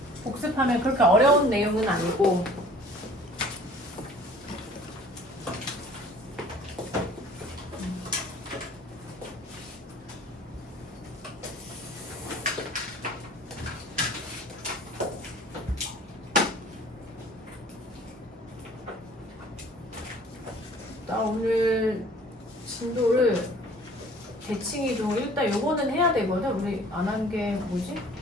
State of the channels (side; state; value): both; normal; correlation 0.50